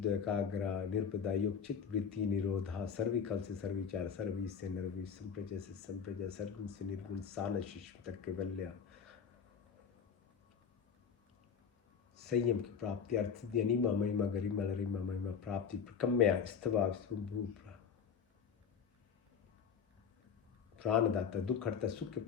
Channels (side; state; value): right; quieter; 6.9 dB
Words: एकाग्र, निर्पदा, योग, चित्त, वृत्ति, निरोधा, सर्विकल से सर्विचार, सर्वी से नरवी, संप्रजय से संप्रजय, सर्गुण से निर्गुण, सान शिष्य तक केवल्या, संयम की प्राप्ति, अर्थ, अनिमा, महिमा, गरिमा, लरिमा, महिमा, प्राप्ति, प्रकम्या, स्तवा, स्वभूप, प्राणदाता, दुख हरता, सुख के